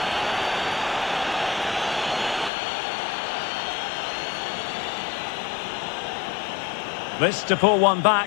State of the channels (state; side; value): drops out; right; at 2.5 s